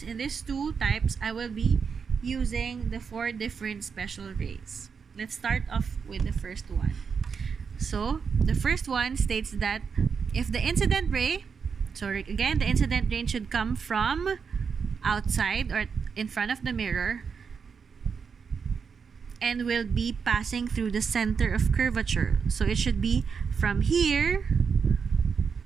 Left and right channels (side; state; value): left; quieter; 6.0 dB